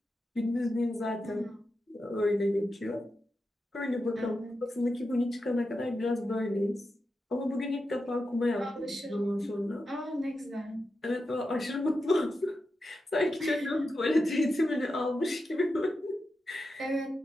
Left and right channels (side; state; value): both; normal; correlation 0.89